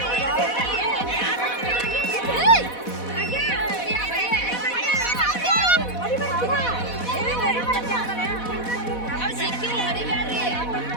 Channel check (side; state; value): right; late; 4.1 ms